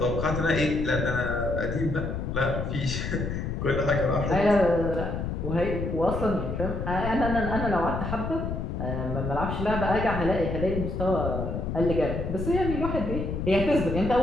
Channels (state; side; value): noise; left; rumble, 3 dB below the sound